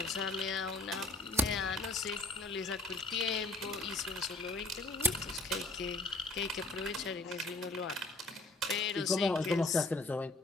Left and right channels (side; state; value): right; quieter; 3.0 dB